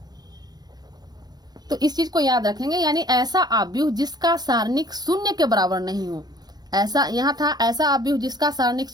तो इस चीज को याद रखेंगे। यानी ऐसा अवयव जिसका सारणिक शून्य के बराबर नहीं हो, ऐसा यहाँ था ऐसा अवयव जिसका सारणिक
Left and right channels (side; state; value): left; late; 0.19 ms